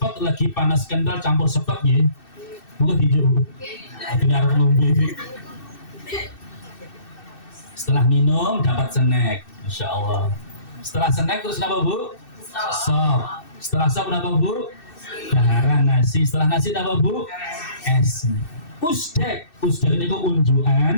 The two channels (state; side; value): late; right; 2.6 ms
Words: pot lagi panas kental campur sepet ya. Bukan hijau. Benar ngombe. Setelah minum dapat snack, Masya Allah. Setelah snack terus apa Bu? Sop. Setelah sop apa Bu? Daharan nasi. Setelah nasi apa Bu? Es. Usdek itu